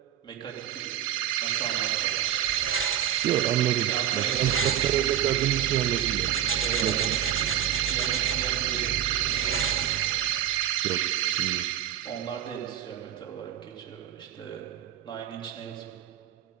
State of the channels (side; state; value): left; quieter; 10.7 dB